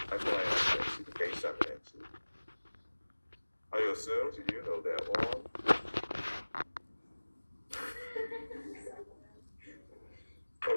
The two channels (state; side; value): inverted; both; correlation -1.00